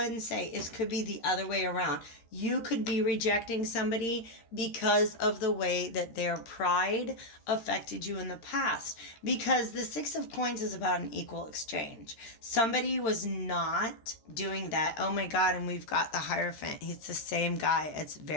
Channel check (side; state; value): right; late; 13 ms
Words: and say, it could be the other way around. You could be rejecting somebody because of the way that their pride affected you in the past. Because the Six of Coins is about an equal exchange. Somebody was not doing that. Oh my God, and we've got the Hierophant. He's the same guy. It's